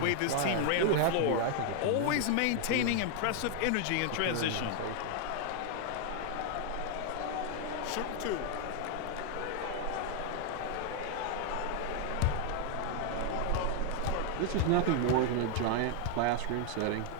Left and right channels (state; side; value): different; both; correlation 0.00